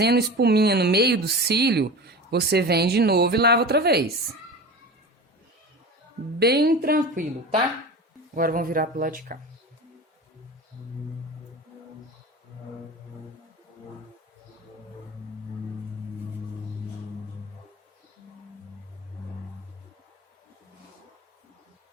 espuminha no meio do cílio, você vem de novo e lava outra vez. Bem tranquilo, tá? Agora vamos virar pro lado de cá.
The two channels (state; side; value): normal; both; correlation 0.32